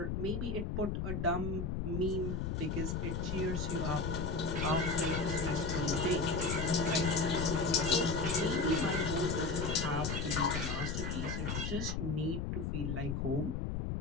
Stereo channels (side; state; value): left; noise; rumble, 2 dB below the sound